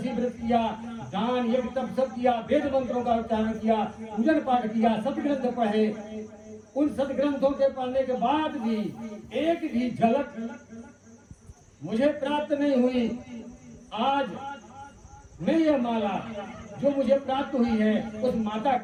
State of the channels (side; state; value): both; identical; correlation 1.00